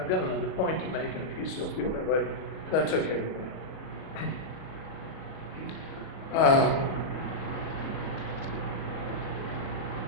got another point to make, and if you still feel that way, that's okay with me.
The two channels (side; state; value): right; late; 38 ms